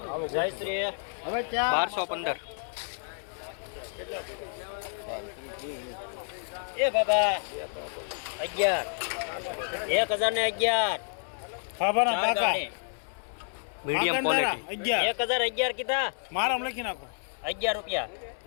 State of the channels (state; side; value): silent; right; 58 dB below the other